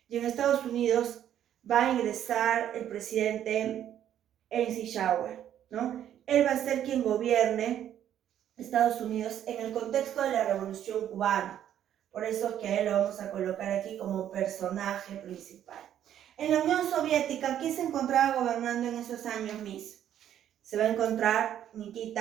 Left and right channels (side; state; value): left; quieter; 10.6 dB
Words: y en Estados Unidos va a ingresar el presidente Eisenhower, ¿no? Él va a ser quien gobierne Estados Unidos en el contexto de la Revolución Cubana. Por eso es que a él lo vamos a colocar aquí como personaje principal. En la Unión Soviética, ¿quién se encontraba gobernando en esos años, Miss? Se va a encontrar